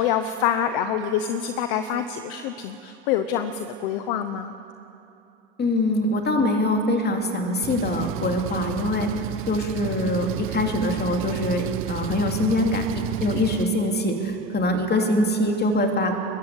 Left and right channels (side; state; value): both; normal; correlation 0.27